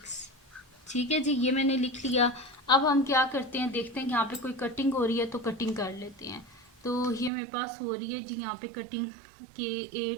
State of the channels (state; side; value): drops out; left; at 7.3 s